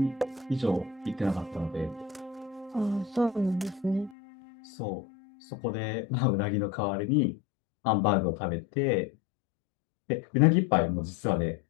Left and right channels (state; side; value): drops out; right; at 4.2 s